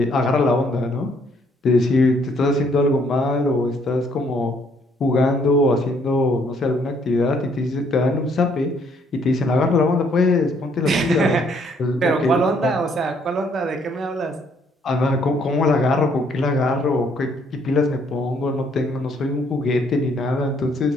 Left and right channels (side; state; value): both; normal; correlation 0.66